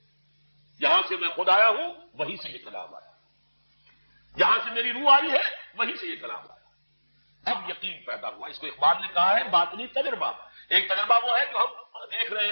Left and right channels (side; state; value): both; inverted; correlation -1.00